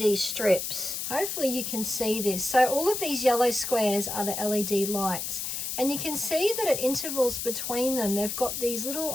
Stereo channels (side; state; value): left; noise; hiss, 4 dB below the sound